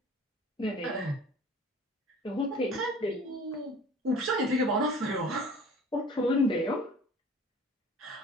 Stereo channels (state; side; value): normal; both; correlation 0.45